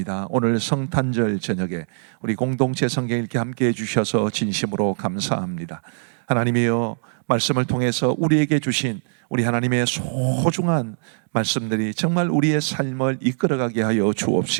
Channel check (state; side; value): silent; left; digital silence